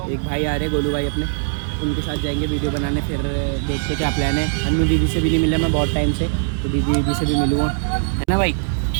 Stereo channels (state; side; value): silent; left; 64 dB below the other